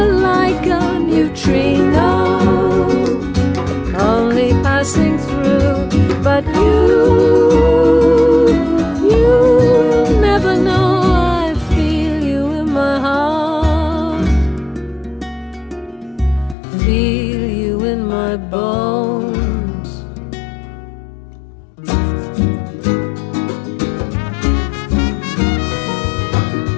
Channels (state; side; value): drops out; right; at 16.6 s